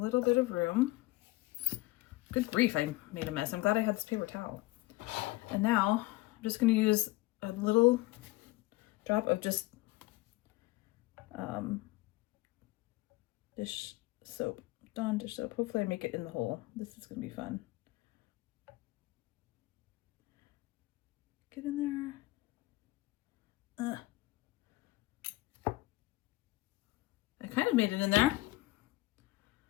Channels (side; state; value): right; quieter; 20.0 dB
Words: bit of room. Good grief, I made a mess. I'm glad I had this paper towel. And now I'm just going to use a little drop of just dish soap, Dawn dish soap. Hopefully I make it in the hole. This is going to be fun. Get in there. I kind of made it in there.